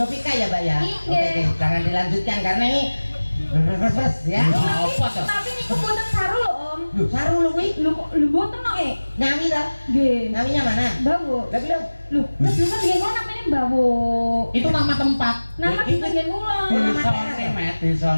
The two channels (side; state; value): both; inverted; correlation -1.00